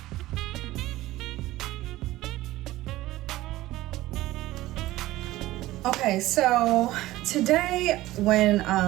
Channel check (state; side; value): quieter; left; 16.8 dB